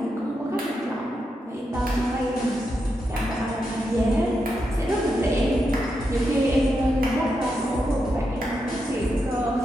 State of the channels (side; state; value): both; normal; correlation 0.85